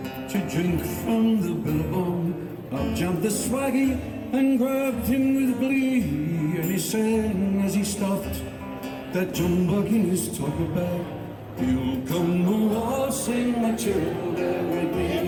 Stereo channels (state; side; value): identical; both; correlation 1.00